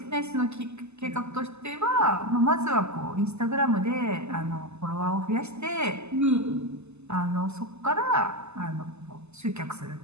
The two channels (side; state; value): left; late; 0.81 ms